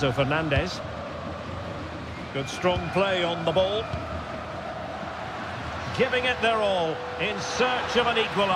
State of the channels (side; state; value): both; identical; correlation 1.00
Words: Fernandez. Good strong play on the ball. Giving it their all in search of an